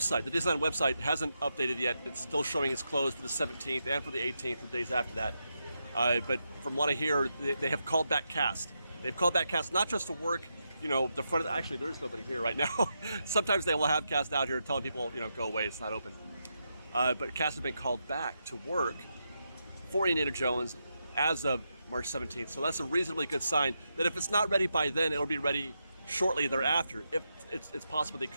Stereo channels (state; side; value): inverted; both; correlation -0.85